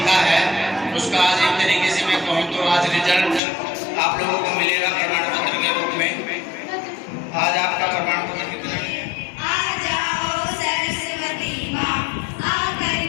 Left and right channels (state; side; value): drops out; right; at 3.4 s